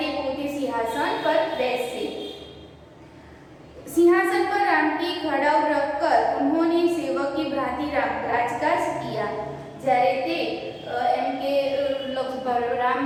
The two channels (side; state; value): both; identical; correlation 1.00